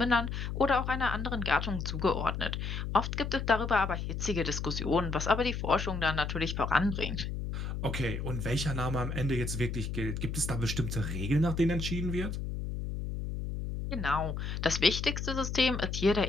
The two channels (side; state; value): left; noise; hum, 4 dB below the sound